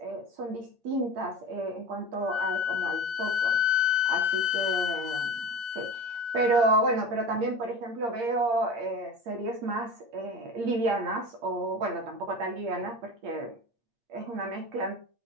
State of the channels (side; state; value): left; late; 8.6 ms